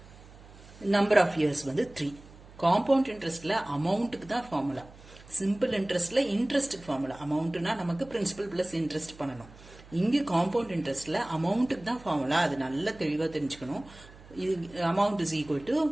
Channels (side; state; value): right; noise; hum, 21 dB below the sound